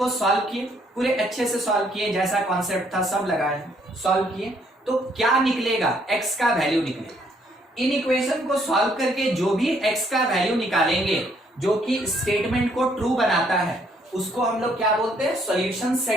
सॉल्व किए, पूरे अच्छे से सॉल्व किए, जैसा कॉन्सेप्ट था सब लगाए, सॉल्व किए, तो क्या निकलेगा? x का वैल्यू निकलेगा। इनइक्वेशन को सॉल्व करके जो भी x का वैल्यू निकालेंगे जो कि स्टेटमेंट को ट्रू बनाता है, उसको हम लोग क्या बोलते हैं? सॉल्यूशन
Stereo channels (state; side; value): normal; both; correlation 0.68